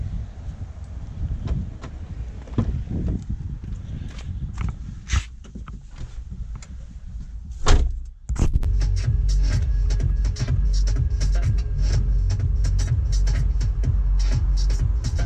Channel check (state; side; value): identical; both; correlation 1.00